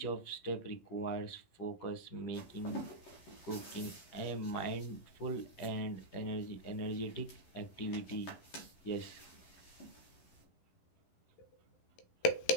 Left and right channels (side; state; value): right; late; 11 ms